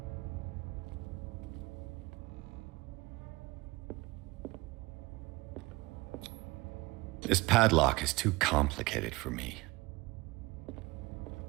This padlock is too complicated for me.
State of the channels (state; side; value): quieter; left; 22.1 dB